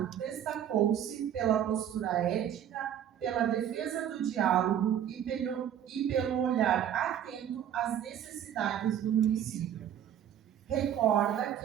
destacou-se pela postura ética, pela defesa do diálogo e pelo olhar atento às necessidades do município. Recorda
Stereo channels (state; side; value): quieter; left; 10.0 dB